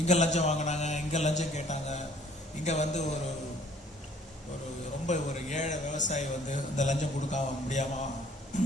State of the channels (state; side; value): normal; both; correlation 0.57